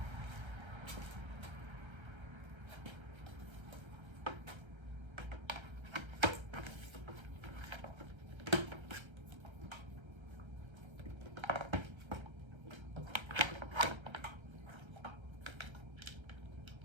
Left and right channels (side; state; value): left; late; 1.3 ms